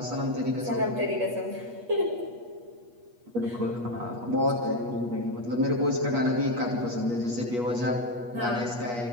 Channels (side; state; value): left; late; 8.3 ms